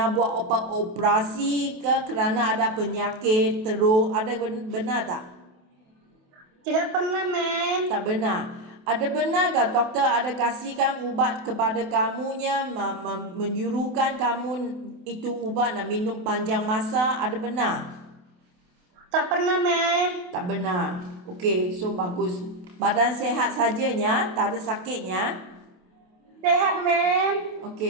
buat operasi ke kerana ada penyakit teruk? Ada benar tak? Tidak pernah, mem. Tak benar. Ada benar tak doktor ada kasihkan ubat kepada kamunya, menyuruhkan kamu itu ubat nak minum panjang masa? Ada benar? Tak pernah, mem. Tak benar. Okey, so bagus. Badan sehat sajanya, tak ada sakitnya. Sehat, mem.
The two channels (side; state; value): left; late; 28 ms